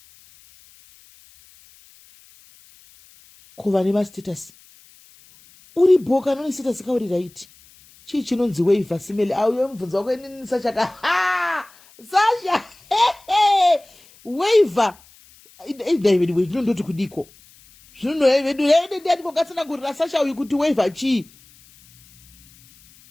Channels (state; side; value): noise; left; hiss, 27 dB below the sound